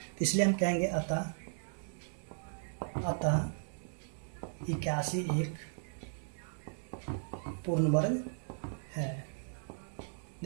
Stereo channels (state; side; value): silent; left; digital silence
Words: इसलिए हम कहेंगे अतः 81 एक पूर्ण वर्ग है।